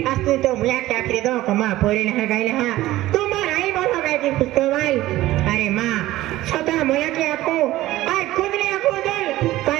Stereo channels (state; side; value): quieter; left; 16.1 dB